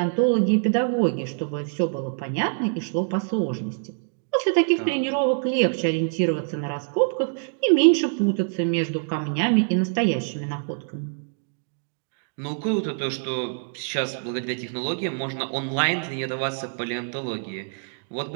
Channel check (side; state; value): left; silent; 62 dB below the other